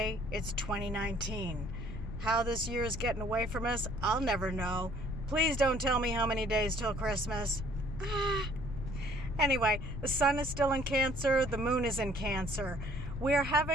It's 2019. How this year is getting away from us, I'll never know. Please don't tell me how many days till Christmas. Anyway, the sun is still in Cancer. The moon is in Cancer. We are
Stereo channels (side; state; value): left; noise; rumble, 7 dB below the sound